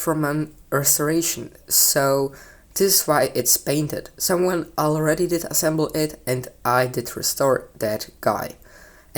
an restoration, so this is why it's painted. Someone already did assemble it and I did restore that guy.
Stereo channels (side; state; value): both; identical; correlation 1.00